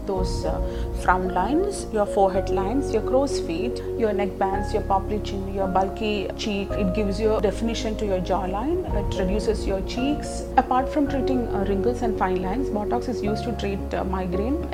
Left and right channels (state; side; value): identical; both; correlation 1.00